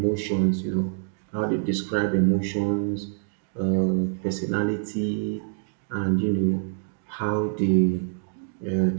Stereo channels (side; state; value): left; silent; digital silence